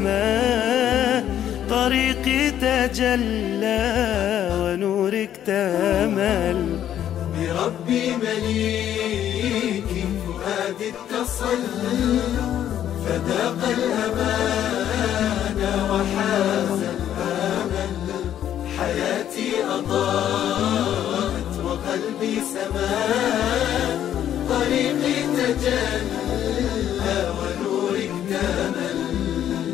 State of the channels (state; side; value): quieter; right; 10.7 dB